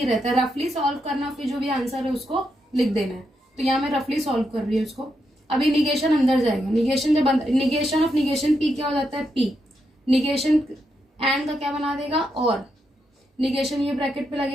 रहता है, रफली सॉल्व करना, फिर जो भी आंसर है उसको लिख देना है। तो यहाँ मैं रफली सॉल्व कर रही हूँ इसको। अभी निगेशन अंदर जाएगा, निगेशन जब निगेशन ऑफ निगेशन पी क्या हो जाता है, पी। निगेशन एंड का क्या बना देगा, और। निगेशन ये ब्रैकेट पे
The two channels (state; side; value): normal; both; correlation 0.82